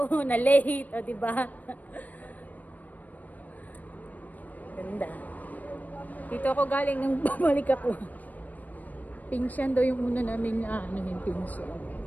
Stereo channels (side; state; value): right; late; 0.079 ms